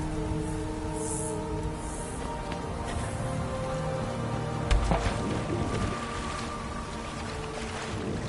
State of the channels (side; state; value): both; identical; correlation 1.00